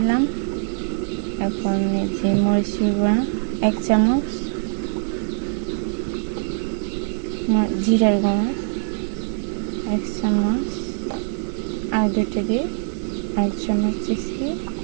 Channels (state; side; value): silent; left; 64 dB below the other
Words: এখন এই যে মরিচের গুঁড়া 1 চামচ, জিরার গুঁড়া 1 চামচ, আর দুটো দিয়ে 1 চামচ দিচ্ছি,